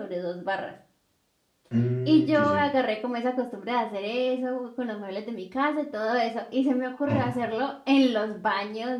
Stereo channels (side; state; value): both; identical; correlation 1.00